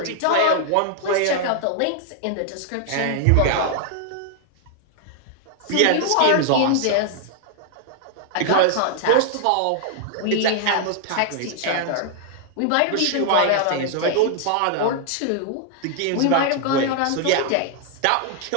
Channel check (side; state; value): both; different; correlation 0.00